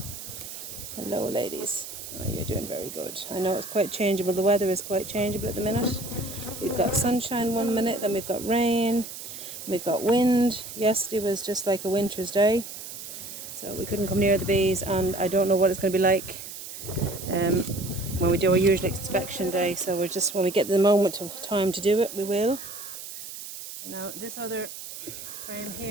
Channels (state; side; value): noise; right; hiss, 11 dB below the sound